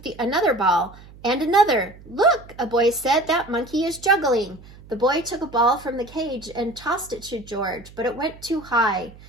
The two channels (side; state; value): right; noise; hum, 21 dB below the sound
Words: another ball and another. "Look," a boy said, "that monkey is juggling." The boy took a ball from the cage and tossed it to George, but it went too high.